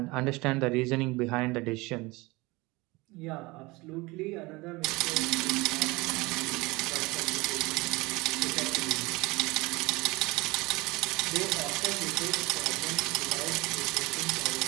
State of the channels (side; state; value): left; quieter; 23.2 dB